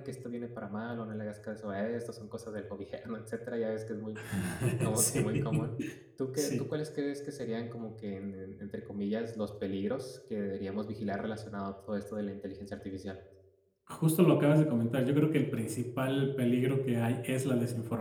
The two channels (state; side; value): identical; both; correlation 1.00